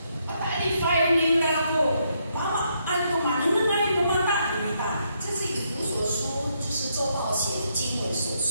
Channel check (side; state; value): both; inverted; correlation -0.76